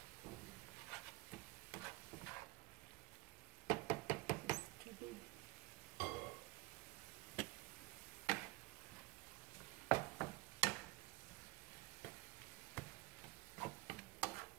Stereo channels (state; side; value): quieter; left; 21.8 dB